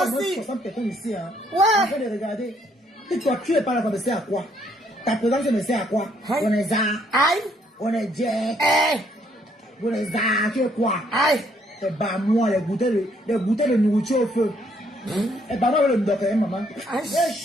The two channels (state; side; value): normal; both; correlation 0.69